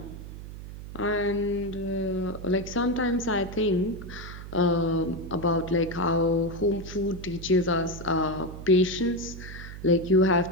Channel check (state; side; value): noise; right; hum, 12 dB below the sound